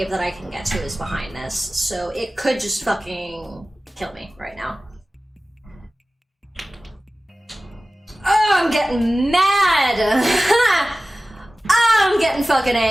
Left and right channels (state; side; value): normal; both; correlation 0.97